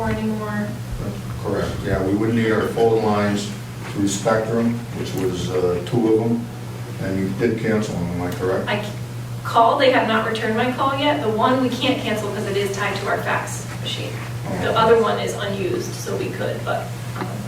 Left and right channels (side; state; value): both; identical; correlation 1.00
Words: anymore. Correct, yeah, we wouldn't need our phone lines through Spectrum, which was 2 of them, and you did cancel them, am I correct? I called, they have not returned my call yet. The one we can't cancel because it is tied to our fax machine. The other one is unused, so we could, but